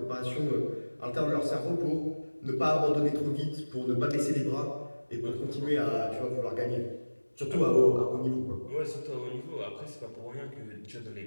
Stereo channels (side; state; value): both; inverted; correlation -1.00